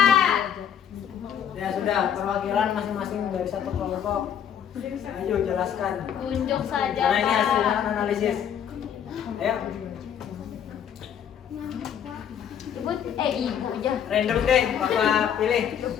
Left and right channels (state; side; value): quieter; right; 8.9 dB